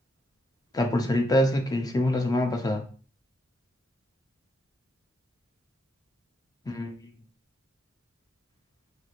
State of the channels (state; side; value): normal; both; correlation 0.78